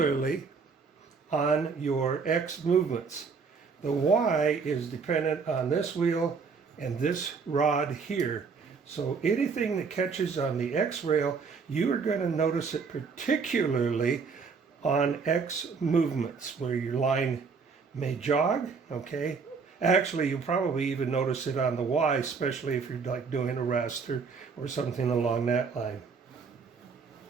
on your X movements. The Y is dependent on this wheel and this rod here. So anything that catches on the X rail, you are going to notice it particularly on X movements where your line may jog, okay? Actually, you'll probably even notice it on the Y, especially if you're like doing a raster or something along that line.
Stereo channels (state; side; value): quieter; left; 5.2 dB